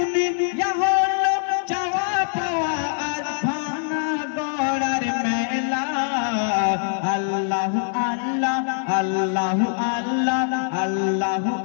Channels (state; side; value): silent; right; digital silence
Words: হলো চাওয়া পাওয়া আর ভাঙা গড়ার মেলা আল্লাহ আল্লাহ আল্লাহ আল্লাহ আল্লাহ